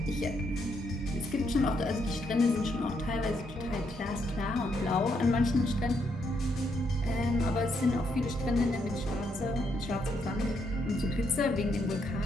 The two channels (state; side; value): normal; both; correlation 0.76